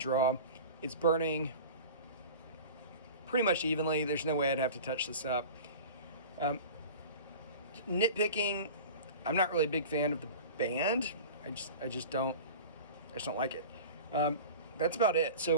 It's burning pretty much evenly. There's no way I'd have to touch this up. Nitpicking, I'm not really a big fan of the band. I just don't like it. That's about it. So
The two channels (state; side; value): inverted; both; correlation -0.36